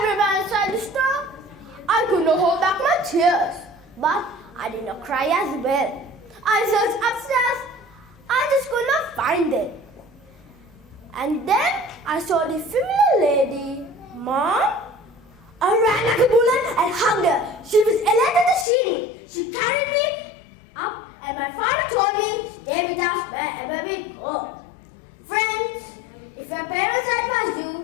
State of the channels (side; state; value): right; drops out; at 18.7 s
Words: inside the store. I could not hold back my tears, but I did not cry as well. I searched upstairs. I just could not find them. And then I saw the familiar lady. Mom? I ran like a bullet and hugged her. She was Elena Tashini. She carried me up and my father told me, stay with us wherever we go. Friends, if your parents advise you,